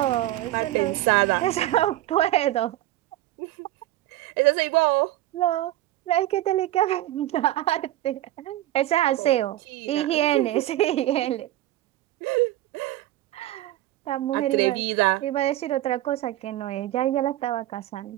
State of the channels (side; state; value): left; quieter; 15.0 dB